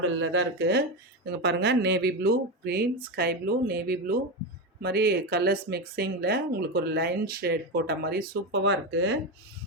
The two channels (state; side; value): normal; both; correlation 0.15